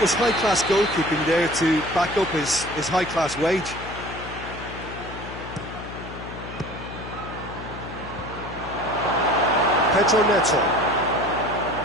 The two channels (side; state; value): left; noise; hum, 12 dB below the sound